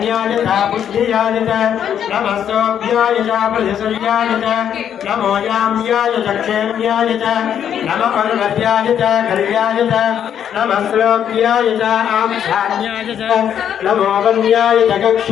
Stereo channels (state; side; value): quieter; right; 9.2 dB